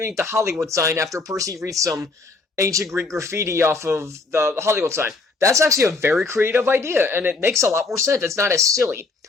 the Hollywood sign after Percy reads some ancient Greek graffiti off of the Hollywood sign. That's actually a very creative idea, and it makes a lot more sense. It's not as silly.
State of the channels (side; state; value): right; quieter; 3.8 dB